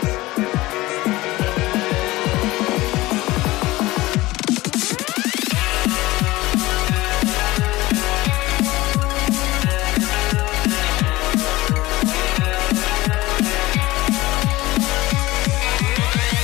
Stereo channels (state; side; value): quieter; right; 19.1 dB